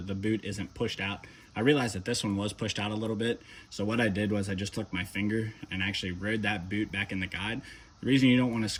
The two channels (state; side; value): identical; both; correlation 1.00